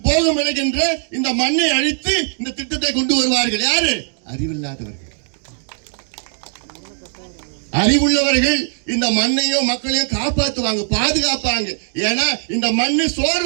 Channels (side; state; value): left; silent; digital silence